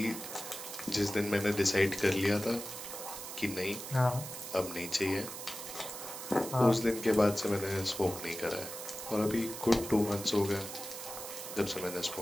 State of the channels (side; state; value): right; noise; hiss, 9 dB below the sound